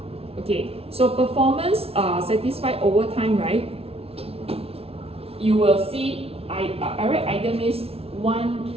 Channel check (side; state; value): left; late; 0.29 ms